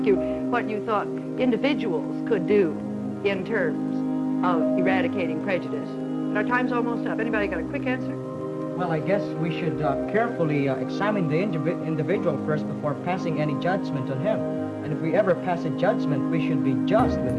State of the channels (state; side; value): identical; both; correlation 1.00